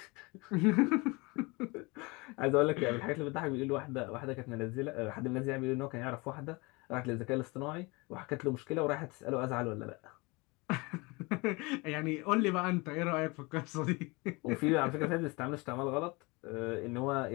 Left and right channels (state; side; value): quieter; right; 26.0 dB